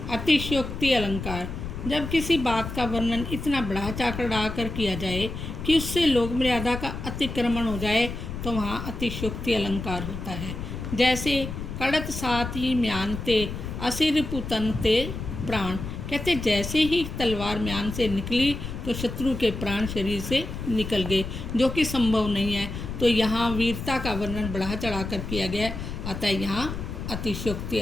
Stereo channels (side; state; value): left; noise; rumble, 7 dB below the sound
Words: अतिशयोक्ति अलंकार, जब किसी बात का वर्णन इतना बढ़ा चढ़ा कर किया जाए कि उससे लोक मर्यादा का अतिक्रमण हो जाए, तो वहाँ अतिशयोक्ति अलंकार होता है। जैसे कड़त साथ ही म्यानते असिर पुतनते प्राण, कहते जैसे ही तलवार म्यान से निकली तो शत्रु के प्राण शरीर से निकल गए, जो कि संभव नहीं है। तो यहाँ वीरता का वर्णन बढ़ा चढ़ा कर किया गया, अतः यहाँ अतिशयोक्ति